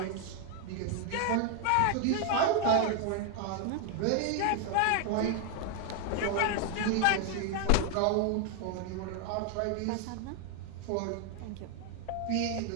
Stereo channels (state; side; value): different; both; correlation 0.00